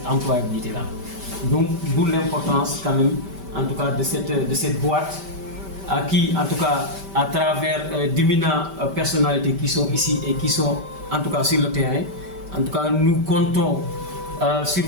employabilité-là. Donc d'où l'importance quand même en tout cas de cette boîte à qui en tout cas à travers d'éminentes personnalités qui sont ici et qui sont en tout cas sur le terrain, en tout cas nous comptons sur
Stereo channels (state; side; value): late; left; 5.1 ms